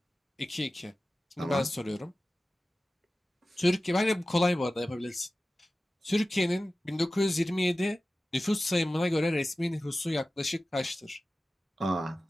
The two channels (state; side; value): normal; both; correlation 0.95